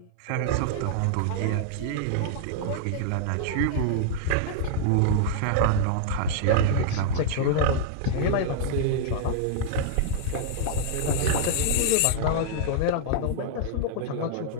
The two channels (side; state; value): both; different; correlation -0.01